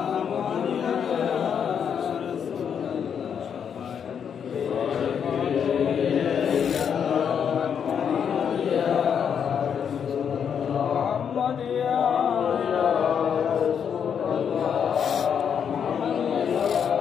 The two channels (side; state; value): right; quieter; 7.7 dB